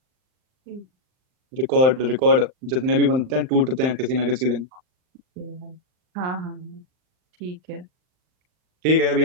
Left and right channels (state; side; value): late; left; 39 ms